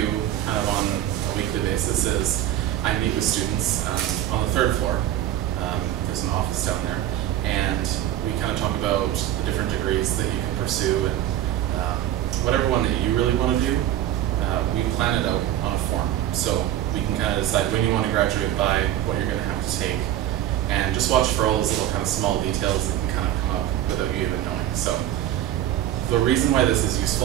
kind of on a weekly basis is I meet with students on the 3rd floor. There's an office down there, and we kind of talk about the different degrees that you can pursue, and whatever one that you really want to do, we plan it out on a form. So we can kind of decide when you want to graduate by, what you're going to have to take, and just watch for all those little kind of small details that can kind of come up without you even knowing. So the reason why this is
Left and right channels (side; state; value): left; quieter; 12.4 dB